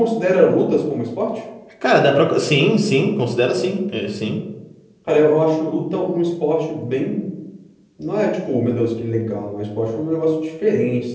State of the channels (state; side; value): identical; both; correlation 1.00